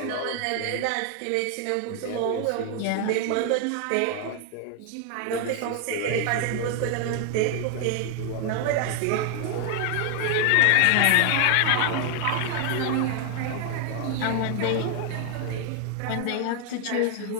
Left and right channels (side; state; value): both; different; correlation 0.00